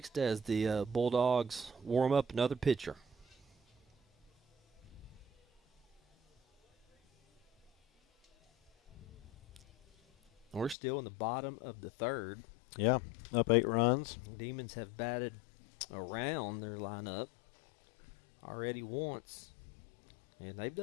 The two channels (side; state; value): right; drops out; at 10.8 s